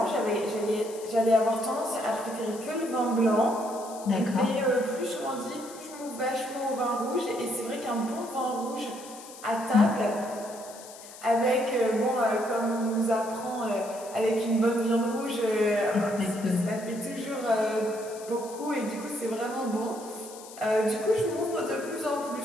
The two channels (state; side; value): noise; left; hiss, 17 dB below the sound